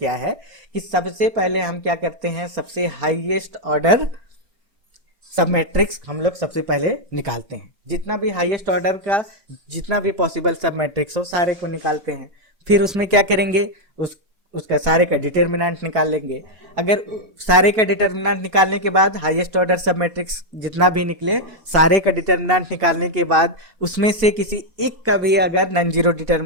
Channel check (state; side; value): late; left; 4.5 ms